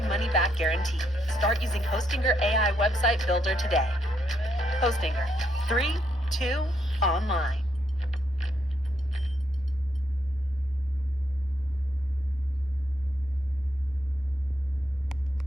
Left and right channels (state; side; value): normal; both; correlation 0.76